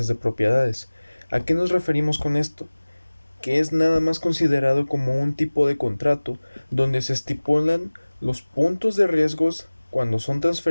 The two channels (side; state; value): both; inverted; correlation -1.00